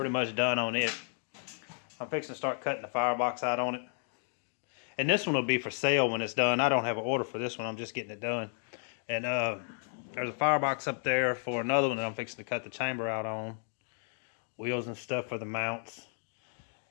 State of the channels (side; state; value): right; silent; 56 dB below the other